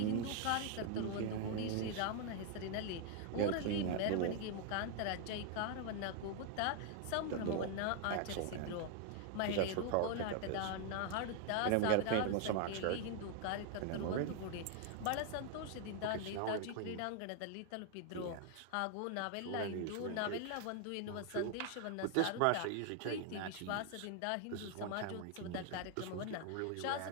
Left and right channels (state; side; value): different; both; correlation 0.00